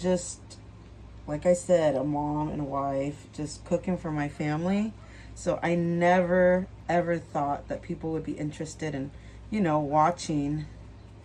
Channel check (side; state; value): both; identical; correlation 1.00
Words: like I said, a mom and a wife, just cooking for my family. So I never, ever thought that people would be interested in, you know, watching